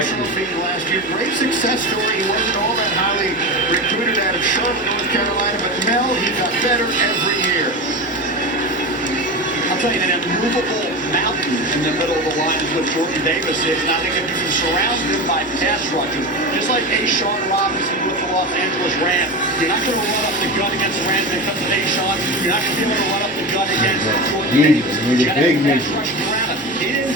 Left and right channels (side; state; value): both; normal; correlation 0.24